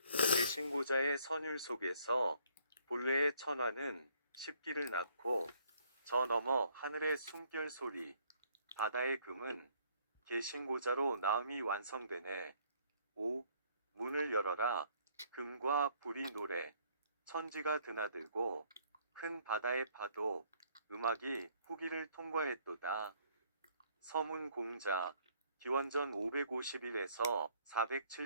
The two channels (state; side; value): inverted; both; correlation -0.64